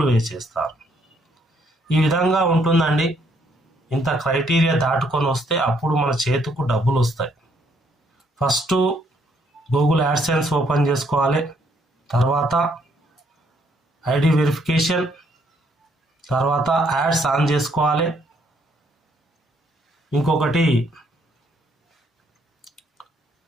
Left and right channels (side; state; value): both; normal; correlation 0.69